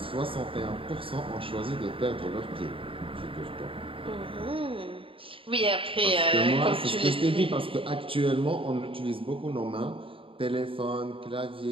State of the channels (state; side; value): late; left; 0.26 ms